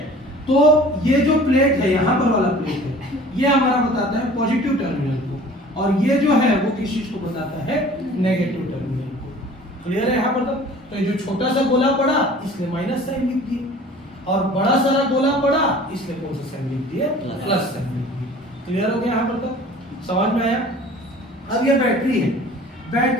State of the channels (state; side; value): normal; both; correlation 0.47